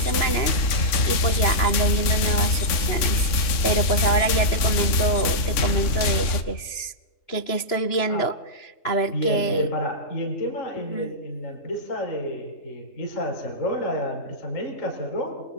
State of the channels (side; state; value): right; late; 3.5 ms